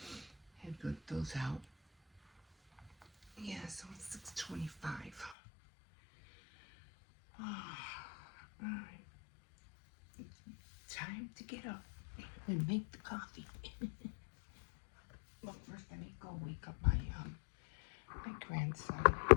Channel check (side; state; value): right; drops out; at 5.4 s